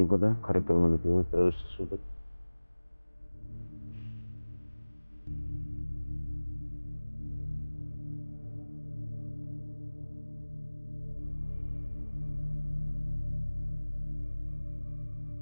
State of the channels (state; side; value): inverted; both; correlation -1.00